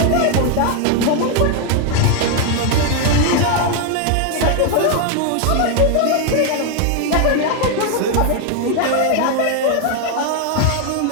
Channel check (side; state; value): both; different; correlation 0.01